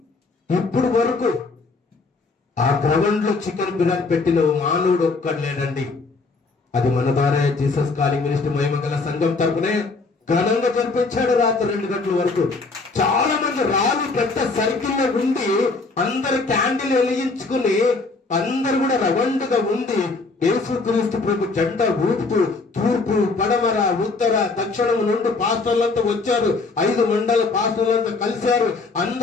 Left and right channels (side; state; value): right; quieter; 3.9 dB